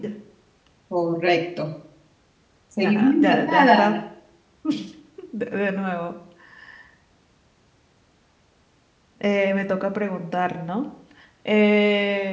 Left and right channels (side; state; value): both; identical; correlation 1.00